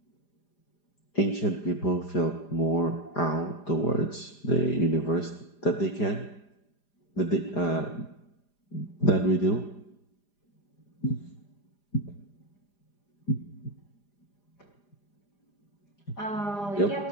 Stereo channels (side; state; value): right; late; 4.9 ms